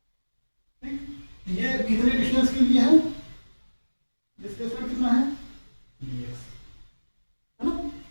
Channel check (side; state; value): both; inverted; correlation -1.00